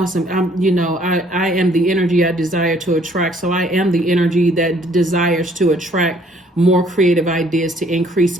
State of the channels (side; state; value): both; normal; correlation 0.61